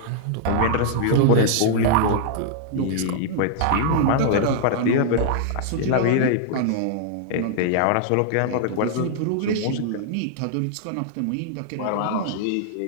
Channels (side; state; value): both; different; correlation -0.01